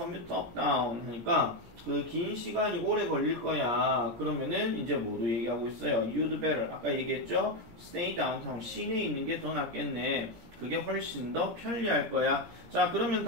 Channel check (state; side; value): late; left; 17 ms